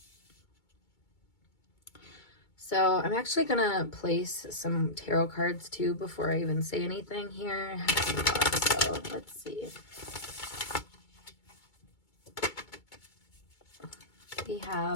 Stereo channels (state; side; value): late; right; 2.2 ms